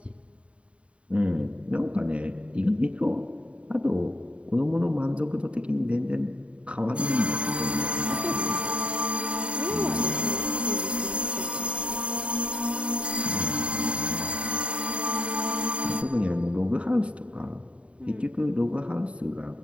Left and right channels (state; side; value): late; left; 0.061 ms